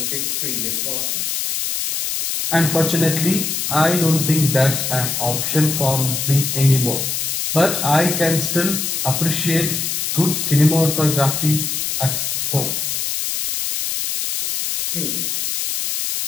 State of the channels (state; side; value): noise; left; hiss, 1 dB below the sound